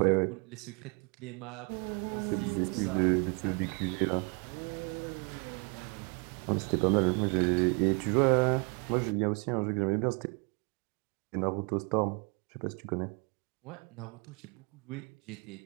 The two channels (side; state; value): left; quieter; 33.8 dB